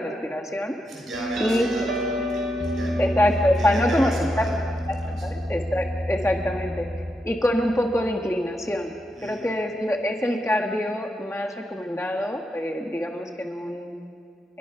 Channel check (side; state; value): both; normal; correlation 0.84